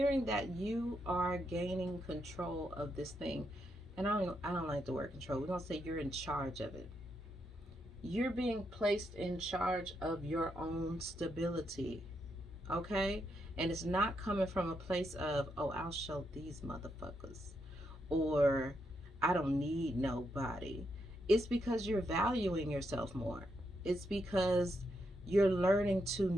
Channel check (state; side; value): normal; both; correlation 0.81